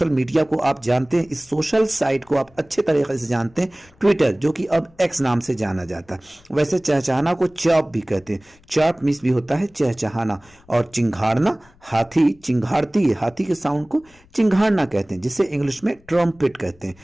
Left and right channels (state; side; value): noise; left; rumble, 29 dB below the sound